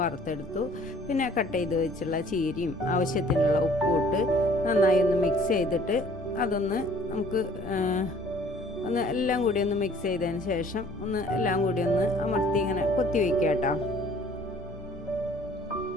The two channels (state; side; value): normal; both; correlation 0.54